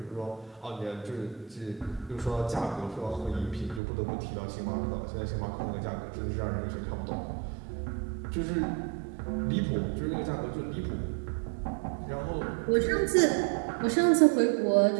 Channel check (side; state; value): left; drops out; at 3.8 s